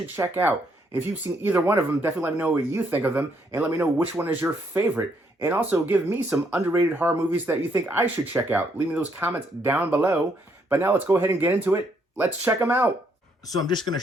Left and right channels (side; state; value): both; normal; correlation 0.72